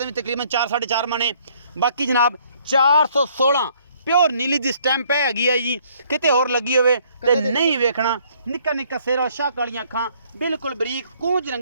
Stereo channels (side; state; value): both; inverted; correlation -0.64